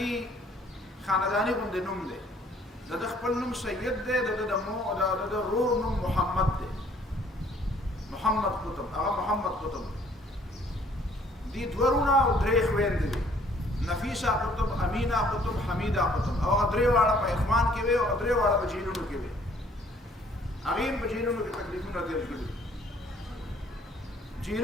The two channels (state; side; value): normal; both; correlation 0.60